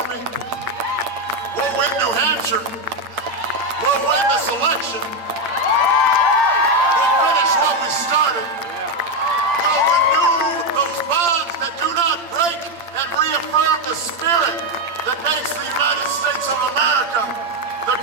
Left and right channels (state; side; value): late; left; 8.8 ms